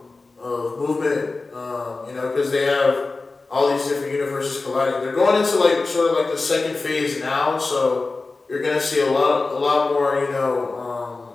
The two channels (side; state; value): right; quieter; 3.7 dB